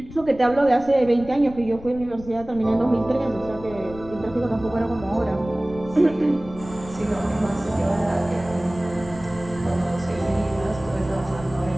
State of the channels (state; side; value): noise; left; rumble, 16 dB below the sound